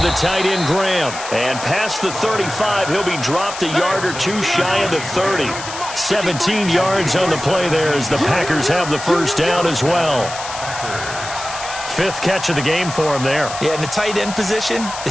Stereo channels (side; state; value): left; noise; hiss, 10 dB below the sound